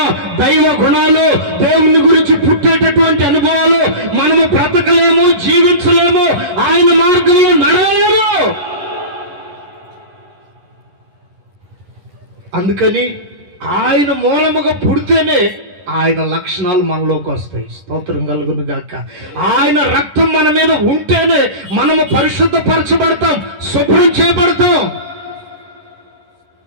దైవ గుణాలు, దేవుని గురించి పుట్టేటటువంటి అనుభవాలు మనము బ్రతకలేము, జీవించలేము, ఆయన మార్గంలో నడవలేము. అందుకని ఆయన మూలముగా పుడితేనే ఆయన లక్షణాలు మనలోకి వస్తాయి. స్తోత్రం కలుగును గాక. ఆయన రక్తం మన మీద ఉంటేనే మనము పరిశుద్ధపరచబడతాం, శుభ్రం చేయబడతాం.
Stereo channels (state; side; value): late; left; 10 ms